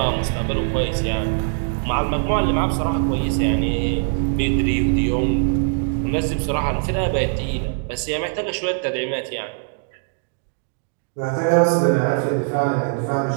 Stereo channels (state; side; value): silent; left; 65 dB below the other